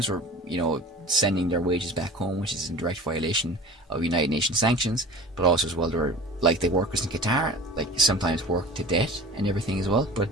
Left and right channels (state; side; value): normal; both; correlation 0.40